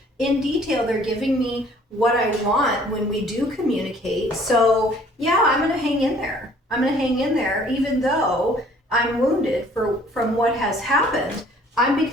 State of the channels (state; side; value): normal; both; correlation 0.56